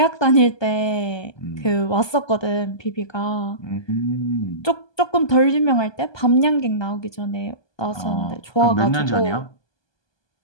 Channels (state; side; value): late; right; 1.2 ms